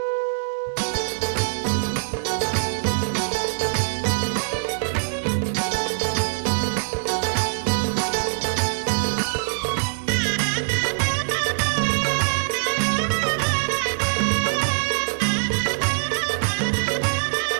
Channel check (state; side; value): silent; left; digital silence